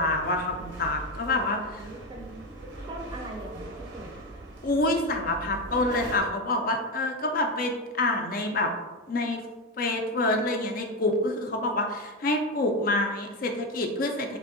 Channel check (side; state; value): both; normal; correlation 0.13